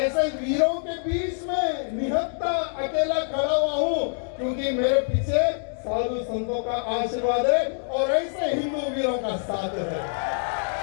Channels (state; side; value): silent; right; digital silence